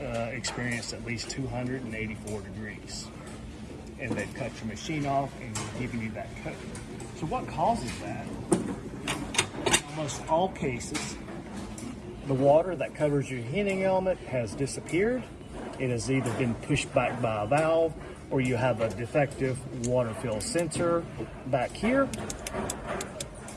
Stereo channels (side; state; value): both; identical; correlation 1.00